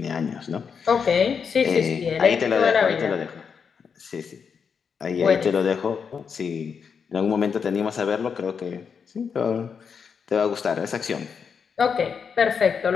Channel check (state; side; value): quieter; right; 6.3 dB